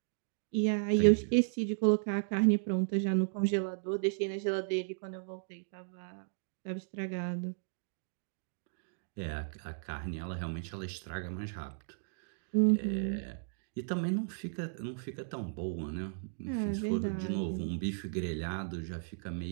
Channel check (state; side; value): silent; left; digital silence